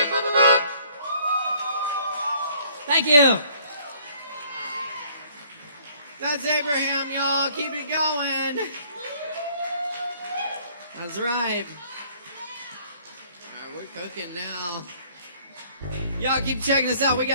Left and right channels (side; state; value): both; inverted; correlation -0.60